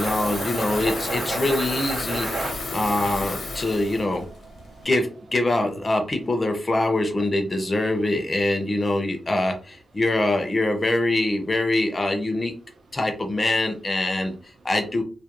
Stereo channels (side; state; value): both; normal; correlation 0.91